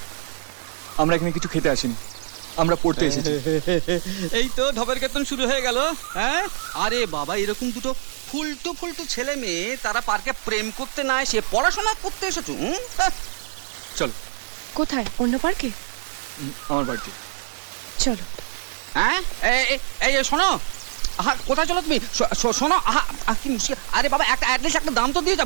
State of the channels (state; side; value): silent; left; digital silence